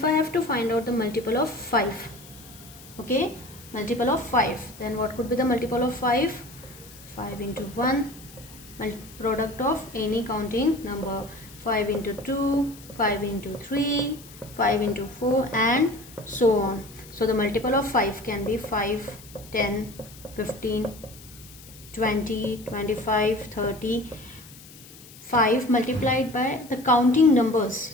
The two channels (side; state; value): left; noise; hiss, 20 dB below the sound